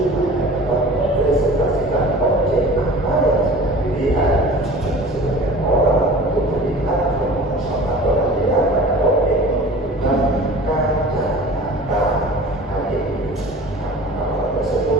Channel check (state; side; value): normal; both; correlation 0.41